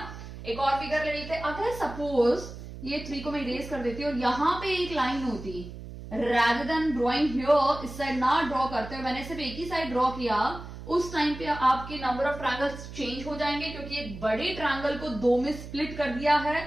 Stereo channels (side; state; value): right; noise; hum, 12 dB below the sound